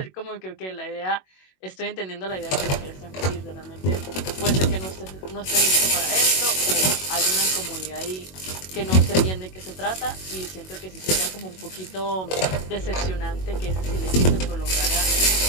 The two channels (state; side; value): late; right; 21 ms